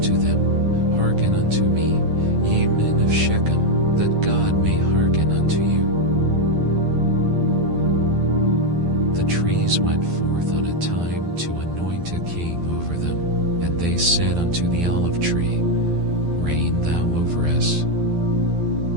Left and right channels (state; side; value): late; left; 12 ms